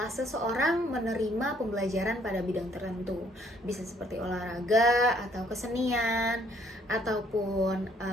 seseorang menerima pembelajaran pada bidang tertentu. Bisa seperti olahraga atau kesenian ataupun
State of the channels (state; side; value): normal; both; correlation 0.64